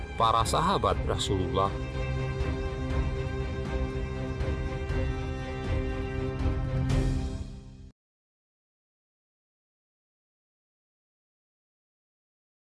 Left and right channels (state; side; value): identical; both; correlation 1.00